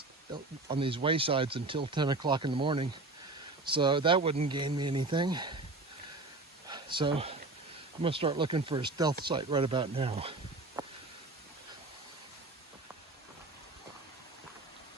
until 10 o'clock in the morning. So that wouldn't gain me anything. So I'm gonna start looking for a stealth site right about now.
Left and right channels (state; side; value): quieter; left; 3.2 dB